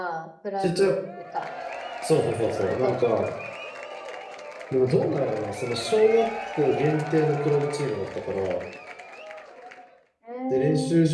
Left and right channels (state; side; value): identical; both; correlation 1.00